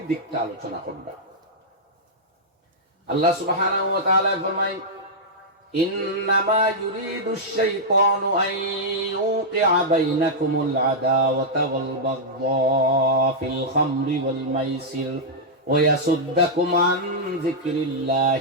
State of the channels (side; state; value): both; normal; correlation -0.08